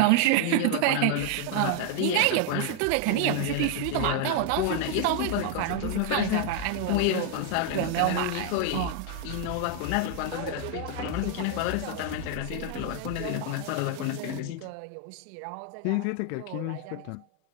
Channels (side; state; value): both; different; correlation 0.00